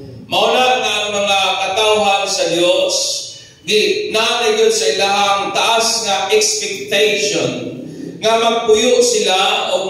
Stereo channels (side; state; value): both; identical; correlation 1.00